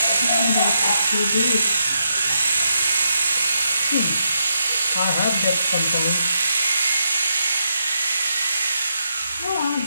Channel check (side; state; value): both; inverted; correlation -0.81